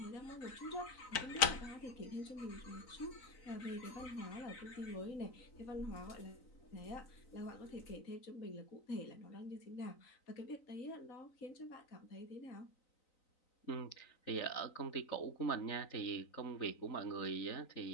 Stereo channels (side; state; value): right; late; 3.9 ms